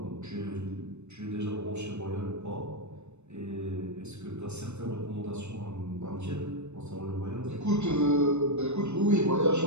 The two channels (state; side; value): late; left; 0.82 ms